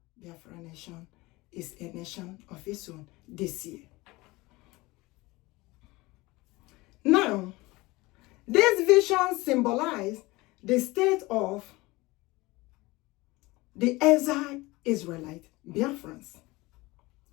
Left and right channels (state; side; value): quieter; right; 21.7 dB